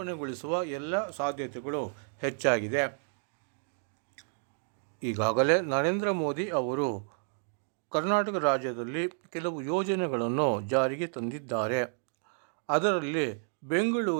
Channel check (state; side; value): silent; left; 57 dB below the other